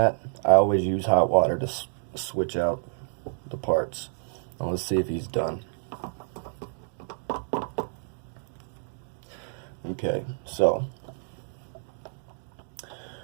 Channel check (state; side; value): silent; left; digital silence